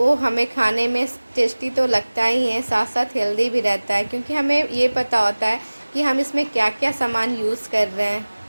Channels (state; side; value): inverted; both; correlation -1.00